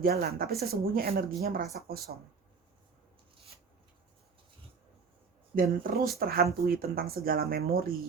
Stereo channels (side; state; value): left; quieter; 5.2 dB